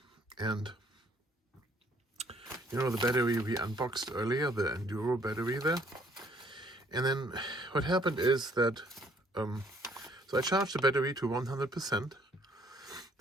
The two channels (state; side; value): normal; both; correlation 0.63